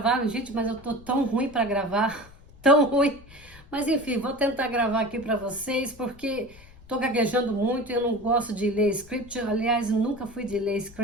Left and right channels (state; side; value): noise; left; rumble, 22 dB below the sound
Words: gente, mas eu tô tão ruim para gravar, tão ruim. Mas enfim, vou tentar gravar aqui para vocês, porque tô gaguejando muito e eu não gosto de ler script. Aliás, eu nunca fui de ler